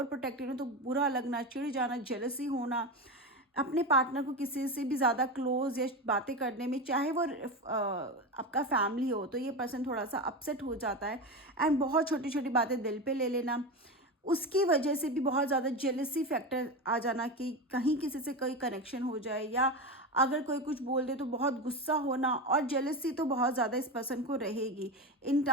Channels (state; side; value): normal; both; correlation 0.20